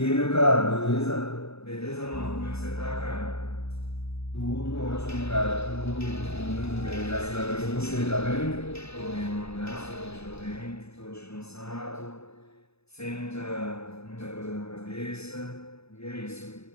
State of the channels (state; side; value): late; right; 0.79 ms